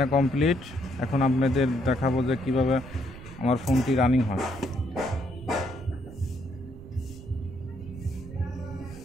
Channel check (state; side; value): noise; right; rumble, 15 dB below the sound